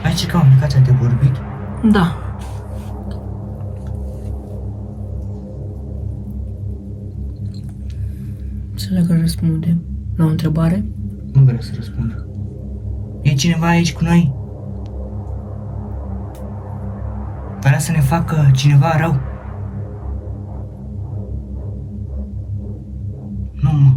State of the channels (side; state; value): both; identical; correlation 1.00